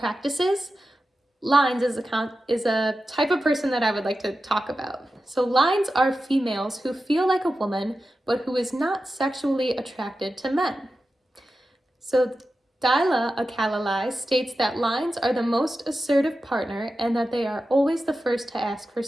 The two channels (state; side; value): normal; both; correlation 0.92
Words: lines is a type of person that I would like to talk about. So lines are females who feel like a woman, but who is not sexually attracted to men. So Daila, a Kalalai, states that lines are the most assertive partner and that they are always the first to ask for